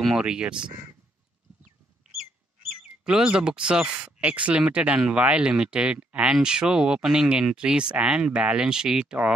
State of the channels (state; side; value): normal; both; correlation 0.72